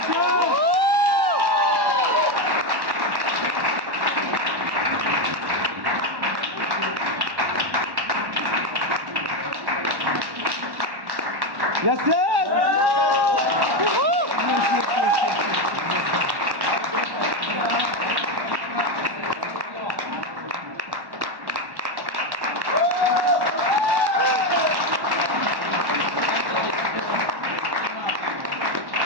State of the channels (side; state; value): left; late; 1.1 ms